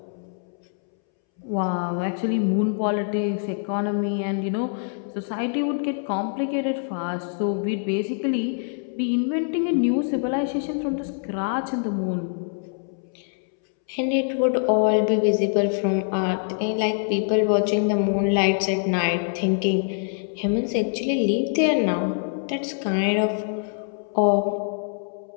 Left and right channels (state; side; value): silent; right; 62 dB below the other